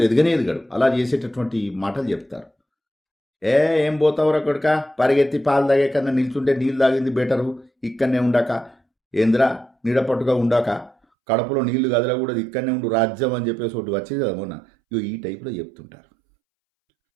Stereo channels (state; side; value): drops out; left; at 11.0 s